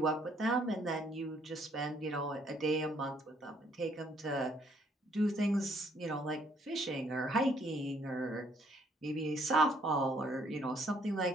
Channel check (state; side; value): normal; both; correlation 0.66